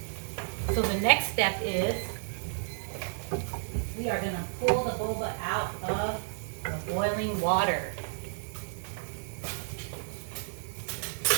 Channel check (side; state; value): left; silent; digital silence